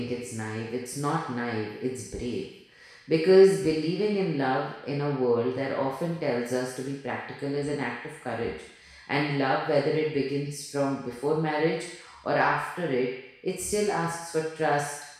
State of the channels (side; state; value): both; identical; correlation 1.00